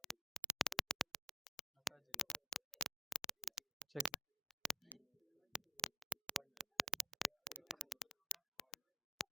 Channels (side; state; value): both; normal; correlation 0.66